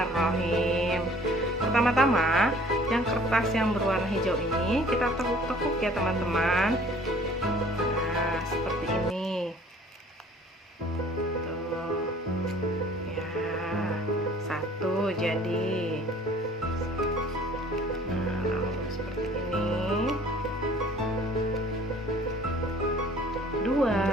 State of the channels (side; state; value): both; normal; correlation 0.53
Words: Pertama-tama, yang kertas yang berwarna hijau ini kita tekuk-tekuk ya teman-teman. Nah, seperti ini. Tuh. Ya, 1 jadi. Nah, lalu seperti ini. 2.